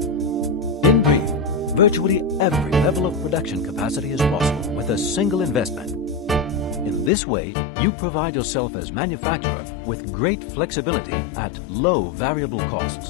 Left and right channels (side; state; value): right; drops out; at 7.1 s